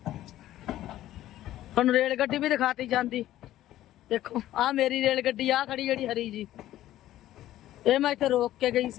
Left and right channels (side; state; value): right; quieter; 13.8 dB